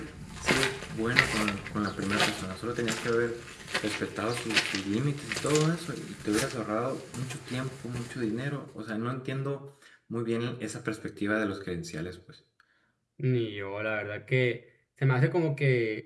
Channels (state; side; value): identical; both; correlation 1.00